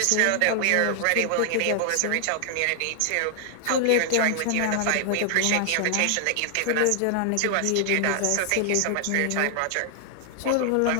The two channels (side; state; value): both; different; correlation 0.00